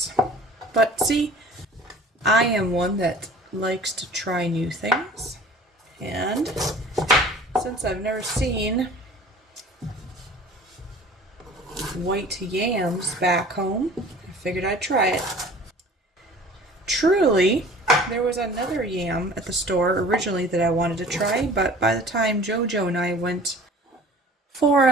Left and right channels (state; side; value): normal; both; correlation 0.46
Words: But see, I am one that likes to try new things. And since I've never seen white yams back home, I figured I'd try it. Truly, there was another yam at the store originally that I wanted to try, but by the time JoJo and I went for